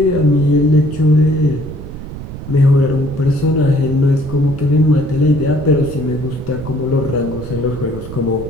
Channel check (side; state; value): right; noise; rumble, 11 dB below the sound